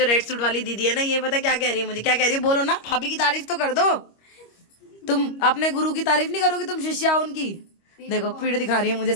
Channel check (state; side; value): late; right; 25 ms